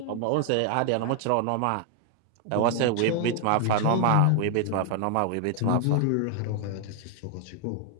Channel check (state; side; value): different; both; correlation 0.00